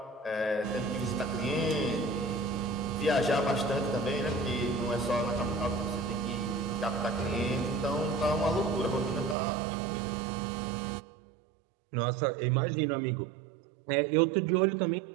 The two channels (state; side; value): drops out; left; at 9.3 s